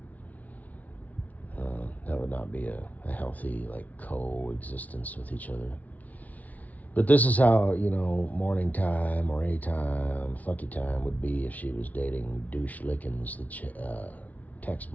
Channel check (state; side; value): late; right; 0.072 ms